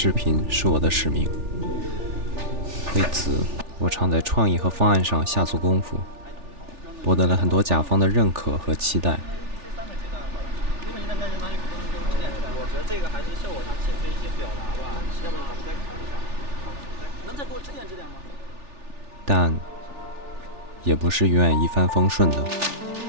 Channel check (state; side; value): late; left; 3.4 ms